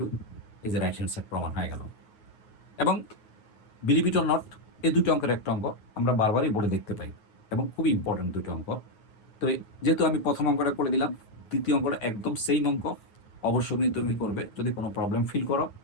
এই যে রাইট হ্যান্ড সাইড প্রমাণ হয়ে গেল। এবং বিলিভ ইট অর নট, এই দুটো অঙ্কের একটা অঙ্ক আমরা বারবারই বোর্ডে দেখতে পাই এবং খুবই ইম্পর্টেন্ট দুটো অঙ্ক। তো যেহেতু আমি প্রথম অঙ্কটা করে দিলাম, দ্বিতীয় অঙ্কটা একদম সেম অঙ্ক, অবশ্যই তুমি করবে। যদি কোনো প্রবলেম ফিল করো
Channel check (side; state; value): right; late; 9.5 ms